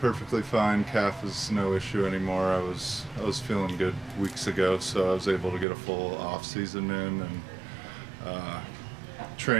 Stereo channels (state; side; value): drops out; left; at 5.7 s